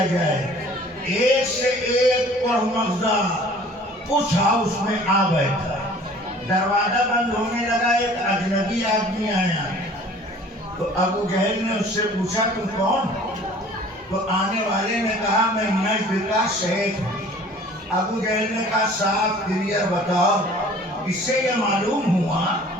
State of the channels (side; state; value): both; normal; correlation 0.50